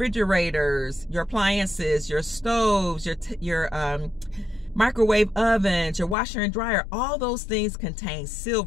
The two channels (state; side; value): drops out; right; at 6.2 s